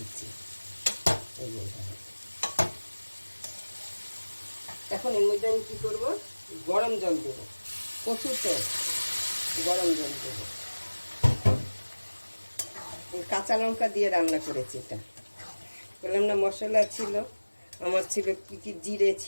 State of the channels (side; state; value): both; inverted; correlation -1.00